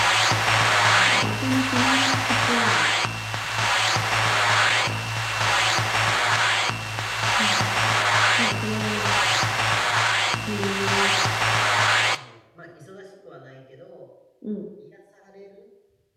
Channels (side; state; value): both; identical; correlation 1.00